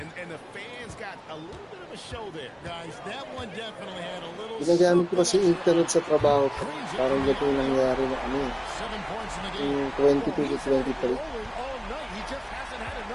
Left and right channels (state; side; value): identical; both; correlation 1.00